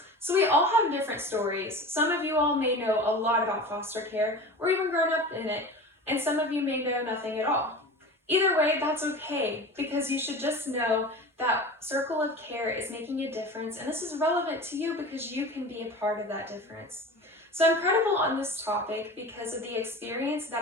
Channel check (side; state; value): both; normal; correlation 0.34